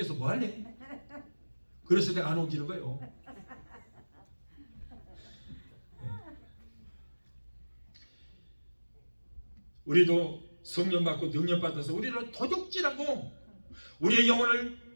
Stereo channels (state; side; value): inverted; both; correlation -1.00